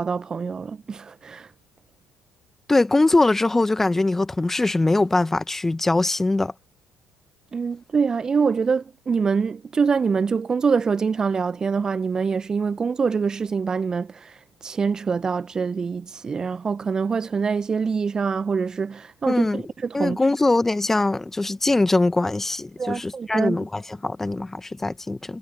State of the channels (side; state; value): both; normal; correlation 0.91